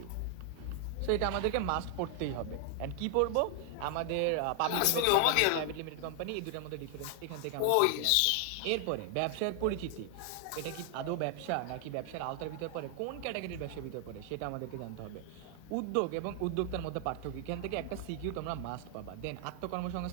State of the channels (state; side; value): different; both; correlation 0.00